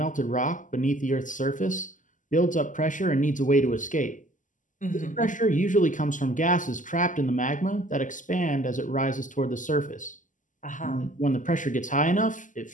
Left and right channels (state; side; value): late; right; 0.37 ms